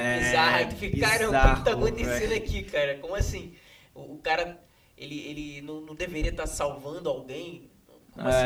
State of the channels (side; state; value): both; identical; correlation 1.00